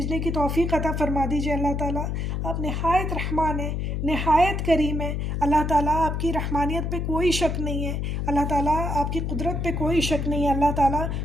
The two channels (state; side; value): noise; left; hum, 1 dB below the sound